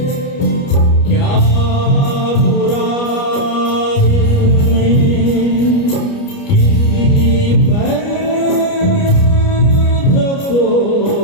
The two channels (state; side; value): late; right; 29 ms